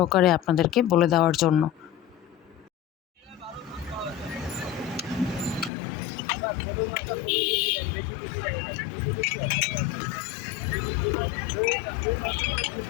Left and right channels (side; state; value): right; drops out; at 5.7 s